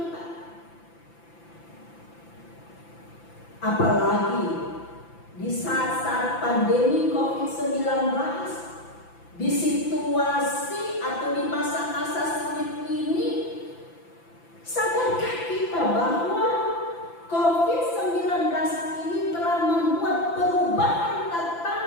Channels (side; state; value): right; late; 5.9 ms